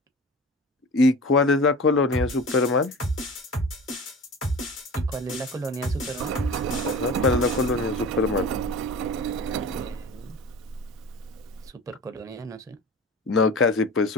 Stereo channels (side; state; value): both; normal; correlation 0.36